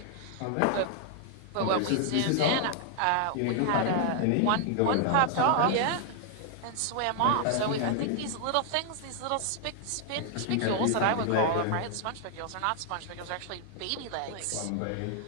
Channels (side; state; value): both; different; correlation 0.00